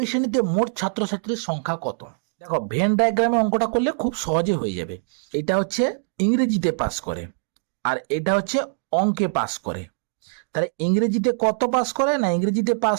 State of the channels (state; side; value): silent; left; digital silence